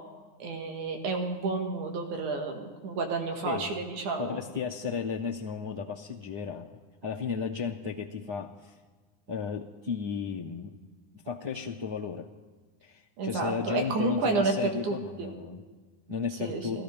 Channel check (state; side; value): late; left; 9.9 ms